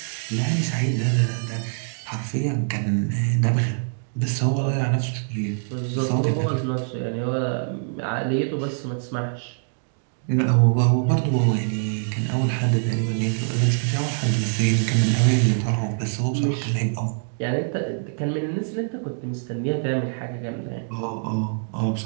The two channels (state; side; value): silent; left; digital silence